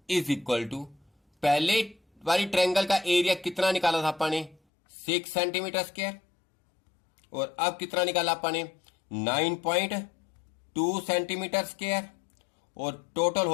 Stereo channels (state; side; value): drops out; right; at 4.6 s